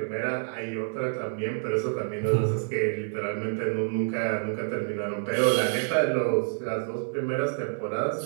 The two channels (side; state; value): left; silent; digital silence